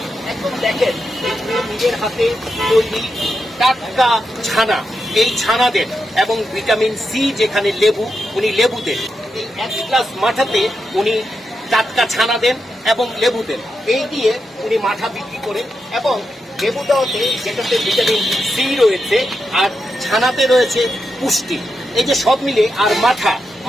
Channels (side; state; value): both; normal; correlation 0.86